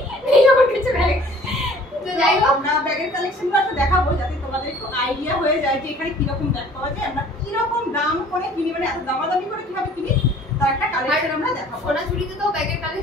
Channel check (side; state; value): both; normal; correlation 0.52